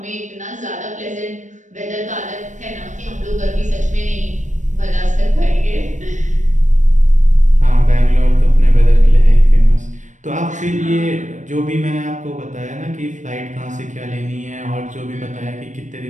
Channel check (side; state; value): left; late; 0.35 ms